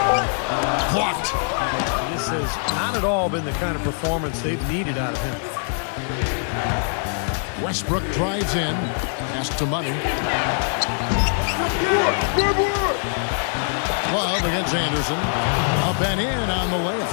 Blocked. This has not at all been the kind of performance they've needed out of him. Westbrook drives in. Pass to Money. Love 12 against Anderson. Up and in on the layup.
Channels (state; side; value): silent; right; 64 dB below the other